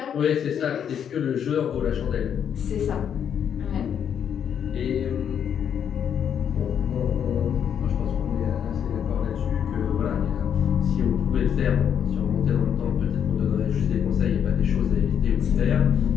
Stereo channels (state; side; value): quieter; right; 8.5 dB